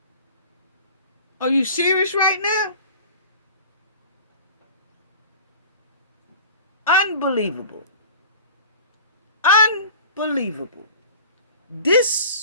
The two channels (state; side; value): inverted; both; correlation -0.42